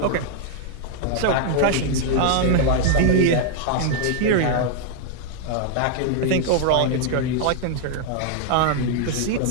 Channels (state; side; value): different; both; correlation 0.00